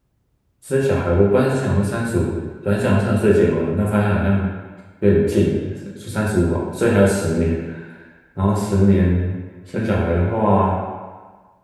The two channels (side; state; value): both; identical; correlation 1.00